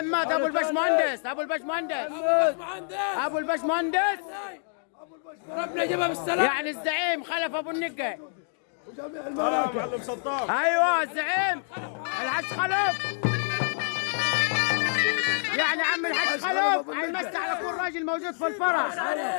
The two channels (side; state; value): right; silent; 60 dB below the other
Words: ابو البشمهندس ابو البشمهندس ربنا يجيبها بالسلامه. يعني الزعيم خلف ابو النقي. ايوه الزعيم الحج خلف، يعني عم الحج خلف هيمسي على كل راجل موجود في الفرح.